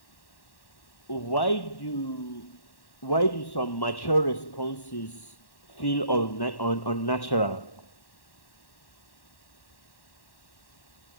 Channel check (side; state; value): right; late; 1.1 ms